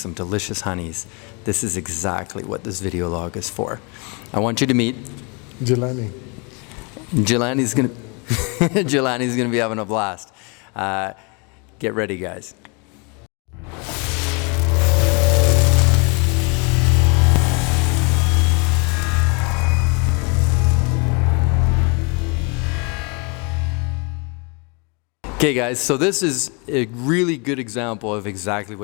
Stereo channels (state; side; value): quieter; right; 32.7 dB